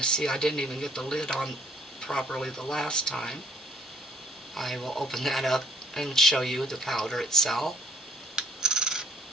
I didn't even get the lid on properly the last time. I will open that up and show you the powder itself.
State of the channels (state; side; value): normal; both; correlation 0.61